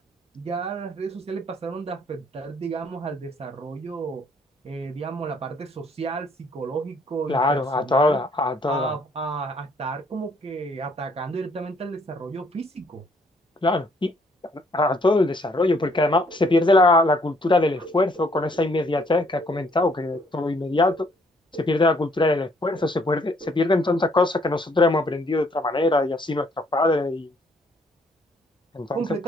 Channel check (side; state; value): both; normal; correlation 0.65